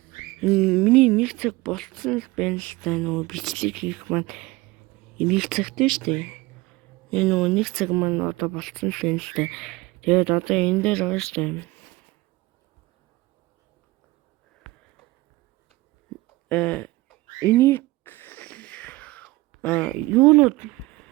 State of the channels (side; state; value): left; quieter; 20.8 dB